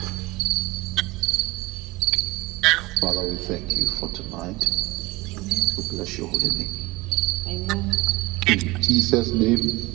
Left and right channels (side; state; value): left; quieter; 21.4 dB